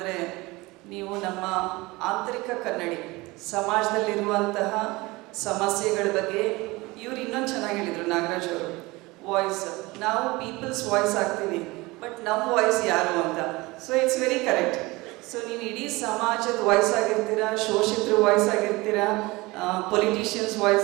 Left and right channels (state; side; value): quieter; left; 22.3 dB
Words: ನೀವು ನಮ್ಮ ಆಂತರಿಕ ಕನ್ನಡಿ, ಸಮಾಜದಲ್ಲಿರುವಂತಹ ಸಮಸ್ಯೆಗಳ ಬಗ್ಗೆ ಇವ್ರು ಇನ್ನೊಂದು ಚೆನ್ನಾಗಿ ಹೇಳಿದರು ನಾಗರಾಜ್ ಅವರು, ವಾಯ್ಸ್. ನಾವು ಪೀಪಲ್ಸ್ ವಾಯ್ಸ್ ಆಗ್ತೀವಿ, ಬಟ್ ನಮ್ಮ ವಾಯ್ಸ್ ಯಾರು ಅಂತ. So it's very correct. So ನೀವು ಇಡೀ ಸಮಾಜದ ವಾಯ್ಸ್ ಆಗಿರ್ತೀರಾ, ಶೋಷಿತರ ವಾಯ್ಸ್ ಆಗಿರ್ತೀರಾ, ಪೊಲಿಟಿಷಿಯನ್ಸ್